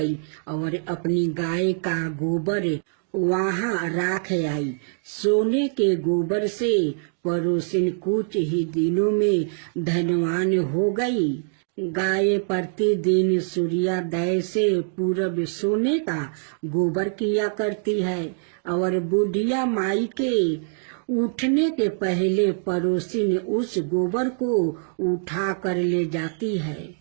और अपनी गाय का गोबर वहां राख आई। सोने के गोबर से पड़ोसिन कुछ ही दिनों में धनवान हो गई। गाय प्रतिदिन सूर्योदय से पूर्व सोने का गोबर किया करती है और बुढ़िया माई के उठने के पहले पड़ोसिन उस गोबर को उठा कर ले जाती है।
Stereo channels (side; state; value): left; silent; digital silence